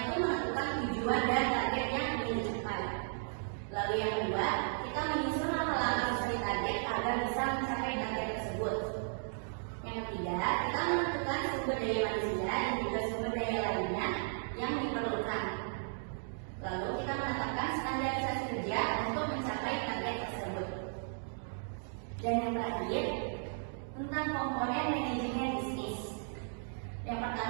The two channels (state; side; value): silent; left; digital silence